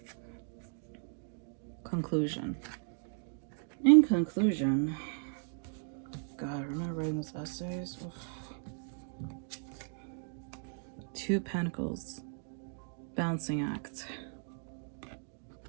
Conclusion. In conclusion, God, remember writing those essays? Oof. Two of Pentacles. Balancing act.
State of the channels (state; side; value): silent; left; 54 dB below the other